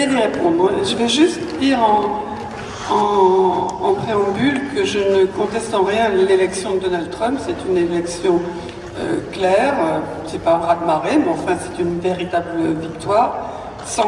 d'y répondre. Je vais juste dire en préambule que je ne conteste en rien l'élection de Donald Trump. C'est une élection claire, c'est pas un raz-de-marée, mais enfin c'est une véritable victoire,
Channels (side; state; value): both; identical; correlation 1.00